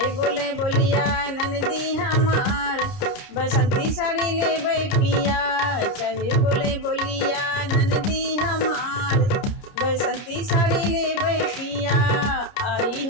बोले बोलिया ननदी हमार, बसंती साड़ी ले पिया। चाहे बोले बोलिया ननदी हमार, बसंती साड़ी ले पिया। आई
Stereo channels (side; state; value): right; late; 30 ms